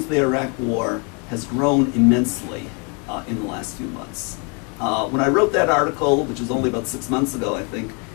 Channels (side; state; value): right; quieter; 34.7 dB